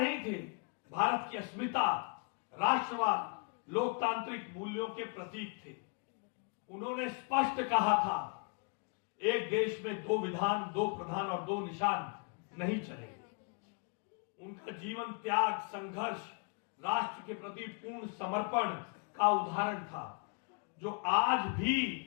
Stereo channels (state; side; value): quieter; right; 37.8 dB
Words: थे, भारत की अस्मिता, राष्ट्रवाद, लोकतांत्रिक मूल्यों के प्रतीक थे। उन्होंने स्पष्ट कहा था, एक देश में दो विधान, दो प्रधान और दो निशान नहीं चलेंगे। उनका जीवन त्याग, संघर्ष, राष्ट्र के प्रति पूर्ण समर्पण का उदाहरण था, जो आज